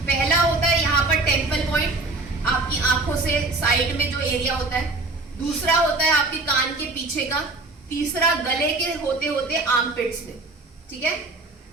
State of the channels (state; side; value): quieter; left; 3.3 dB